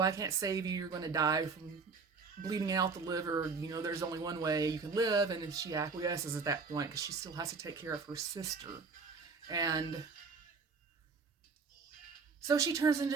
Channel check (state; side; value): quieter; left; 4.8 dB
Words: I can't save you. You're going to die from bleeding out the liver. There's only one way you can live. And then she acquiesces at that point because she still has to take care of her sister. And so she turns into